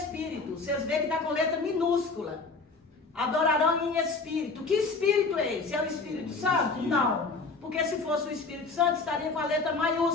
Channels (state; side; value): quieter; right; 4.0 dB